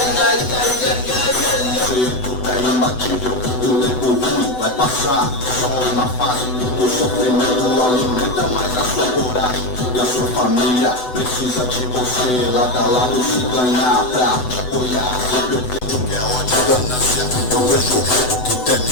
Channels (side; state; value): right; late; 8.0 ms